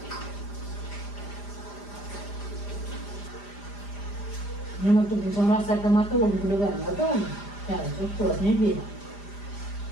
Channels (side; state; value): right; late; 5.0 ms